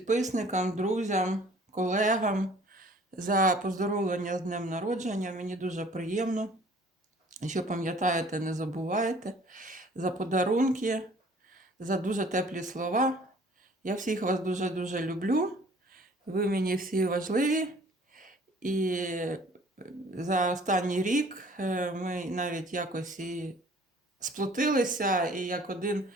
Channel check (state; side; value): normal; both; correlation 0.53